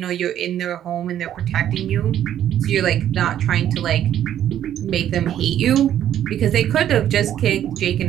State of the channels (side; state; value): left; quieter; 10.9 dB